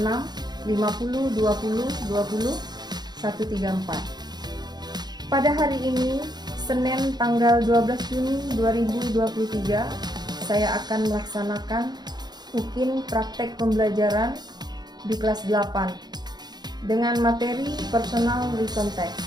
50 20 20 134. Pada hari ini, Senin tanggal 12 Juni 2023, saya akan melaksanakan UKIN praktek pembelajaran di kelas 8 dengan materi personal written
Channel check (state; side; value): late; left; 0.20 ms